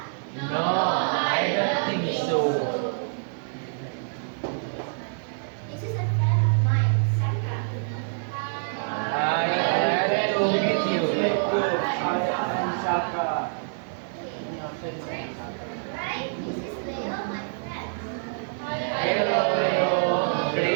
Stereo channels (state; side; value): silent; left; digital silence